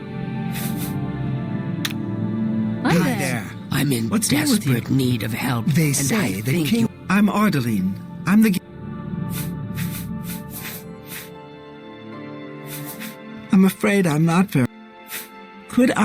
Hi There. I'm in What's new with you? desperate need of help. They and say I the think king... you... I'm Ardeline. I'm the... I'm afraid I'm not very... Quick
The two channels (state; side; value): identical; both; correlation 1.00